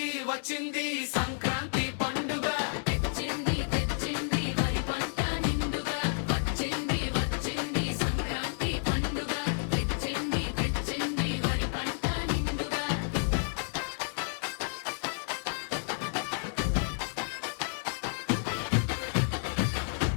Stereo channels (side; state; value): right; silent; digital silence